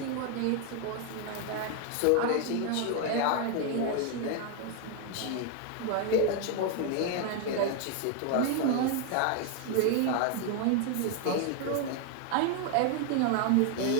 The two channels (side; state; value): both; different; correlation 0.01